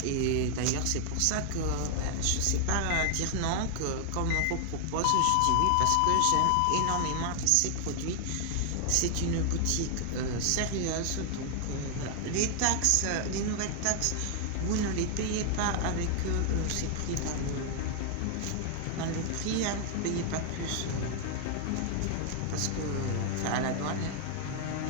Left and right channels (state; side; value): different; both; correlation 0.00